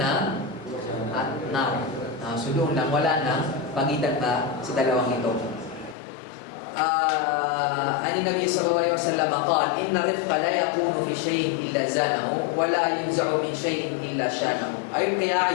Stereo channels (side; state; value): right; drops out; at 6.0 s